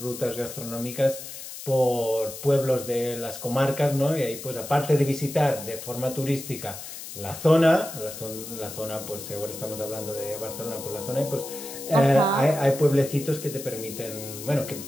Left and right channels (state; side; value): noise; left; hiss, 11 dB below the sound